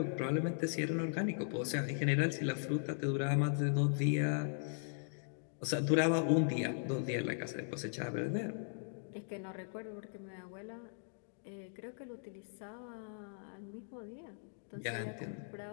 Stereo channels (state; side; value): silent; right; digital silence